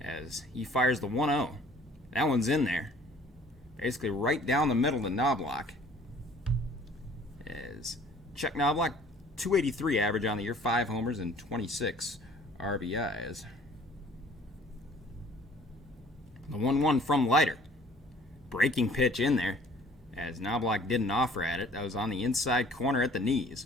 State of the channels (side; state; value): both; normal; correlation 0.53